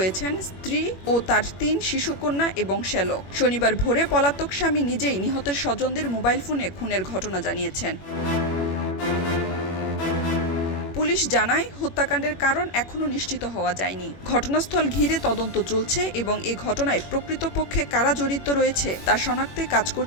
স্ত্রী ও তার ৩ শিশুকন্যা এবং শ্যালক। শনিবার ভোরে পলাতক স্বামী নিজেই নিহতের স্বজনদের মোবাইল ফোনে খুনের ঘটনা জানিয়েছেন। পুলিশ জানায়, হত্যাকাণ্ডের কারণ এখনো নিশ্চিত হওয়া যায়নি। ঘটনাস্থল ঘিরে তদন্ত চলছে এবং এ ঘটনায় প্রকৃতপক্ষে কারা জড়িত রয়েছে তা শনাক্তে কাজ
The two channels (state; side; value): late; right; 21 ms